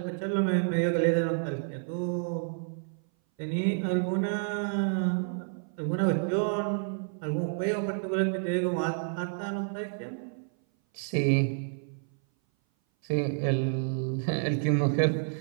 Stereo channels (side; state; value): left; silent; 57 dB below the other